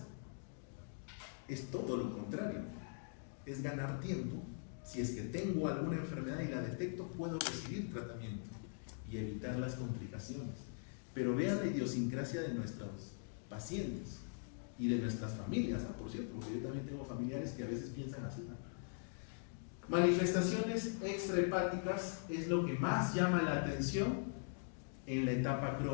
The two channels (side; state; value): right; silent; digital silence